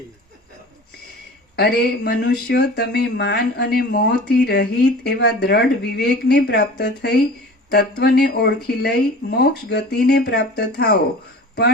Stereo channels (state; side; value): normal; both; correlation 0.40